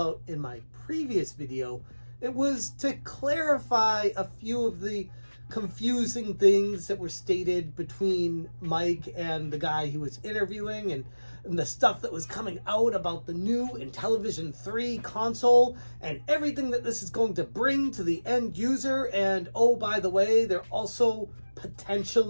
in my previous video, it was to clarify a few of the confusing things that were stated between Mike and the guy he was interviewing, and the stuff that was coming out about the new Intellivision 3 console and everything that this is going to bring to the end user. And oh, by the way, they're also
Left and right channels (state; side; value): inverted; both; correlation -1.00